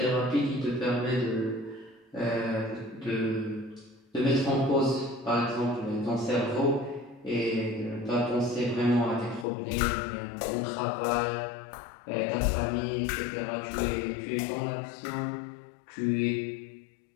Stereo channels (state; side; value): drops out; right; at 9.5 s